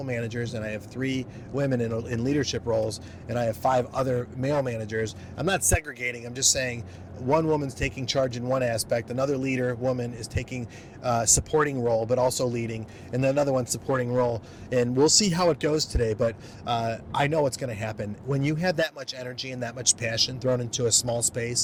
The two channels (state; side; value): identical; both; correlation 1.00